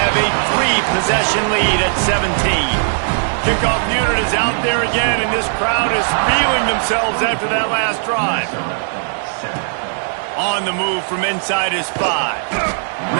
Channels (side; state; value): left; silent; digital silence